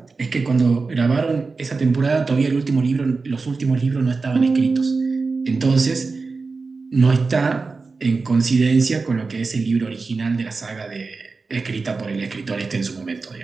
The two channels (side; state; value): left; quieter; 4.2 dB